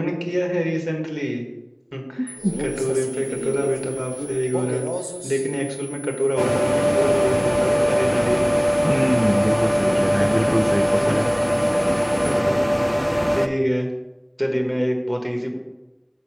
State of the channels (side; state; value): both; identical; correlation 1.00